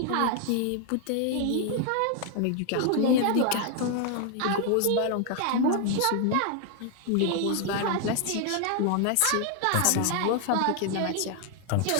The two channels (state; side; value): different; both; correlation 0.00